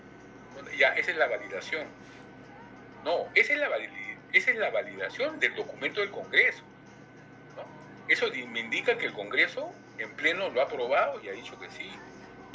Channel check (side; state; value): both; identical; correlation 1.00